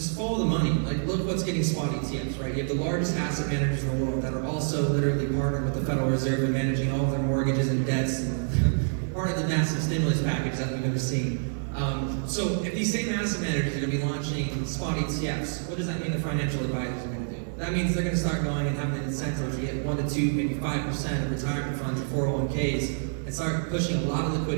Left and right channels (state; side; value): silent; left; 60 dB below the other